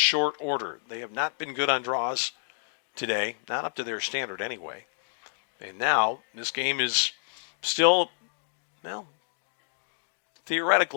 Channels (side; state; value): right; silent; digital silence